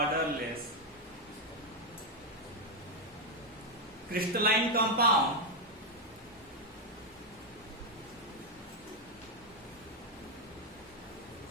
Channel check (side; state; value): both; normal; correlation 0.03